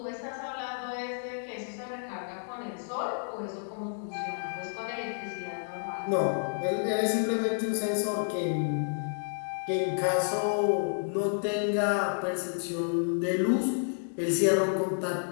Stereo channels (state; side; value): silent; right; digital silence